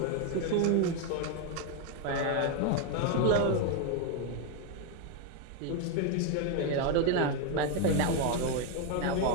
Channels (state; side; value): different; both; correlation 0.01